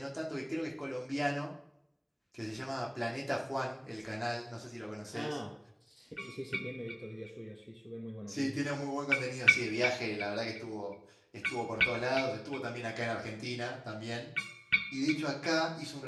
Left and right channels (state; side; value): identical; both; correlation 1.00